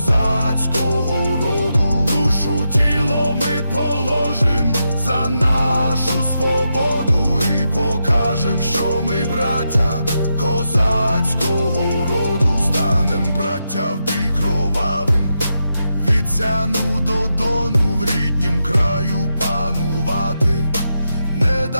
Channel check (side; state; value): both; inverted; correlation -0.85